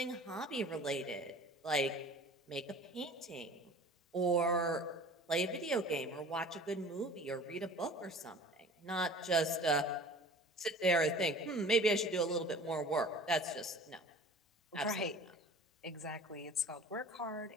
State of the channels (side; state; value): both; normal; correlation 0.44